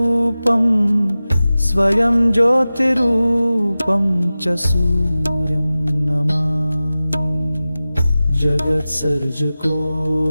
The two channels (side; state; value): both; inverted; correlation -0.96